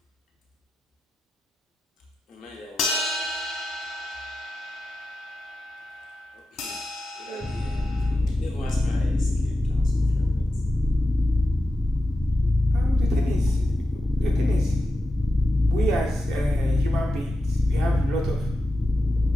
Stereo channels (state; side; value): normal; both; correlation 0.91